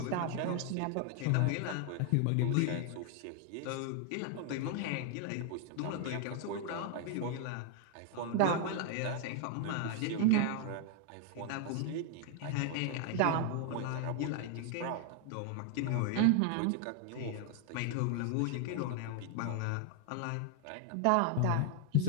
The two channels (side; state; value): both; different; correlation 0.00